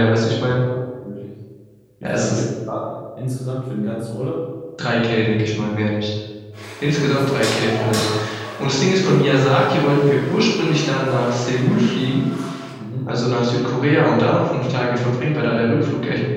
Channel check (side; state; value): both; identical; correlation 1.00